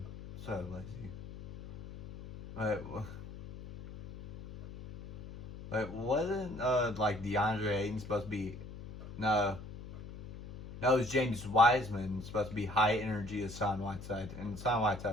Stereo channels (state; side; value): noise; left; hum, 12 dB below the sound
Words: so lazy. Wait, wasn't like DeAndre Ayton supposed to be? No, it was James Wiseman supposed to be high energy as Son Whiteside, and Son